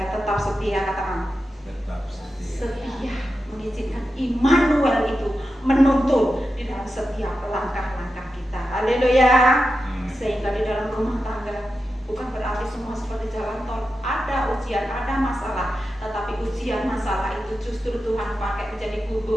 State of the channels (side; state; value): both; normal; correlation 0.90